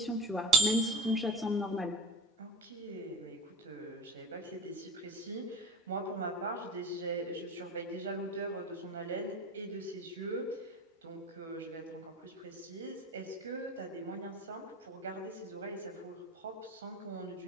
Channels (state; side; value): normal; both; correlation 0.36